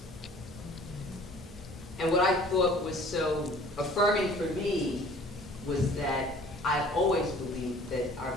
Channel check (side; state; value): both; normal; correlation 0.50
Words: And what I thought was so affirming for me was that I've always believed that our